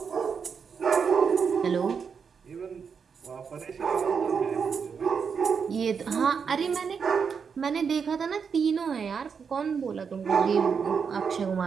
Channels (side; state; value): left; quieter; 6.2 dB